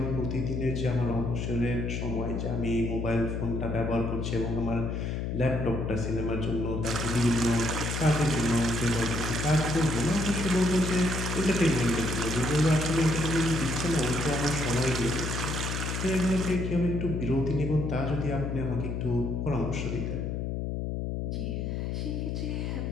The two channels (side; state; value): left; noise; hum, 2 dB below the sound